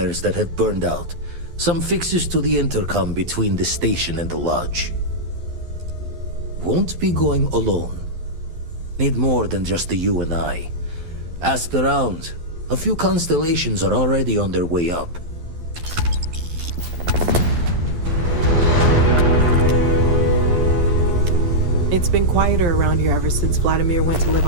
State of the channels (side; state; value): left; late; 12 ms